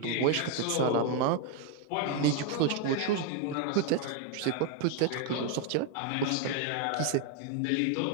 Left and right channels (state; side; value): different; both; correlation 0.01